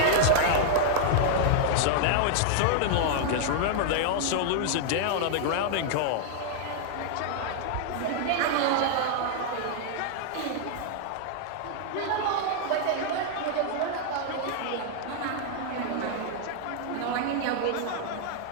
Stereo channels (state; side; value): different; both; correlation -0.01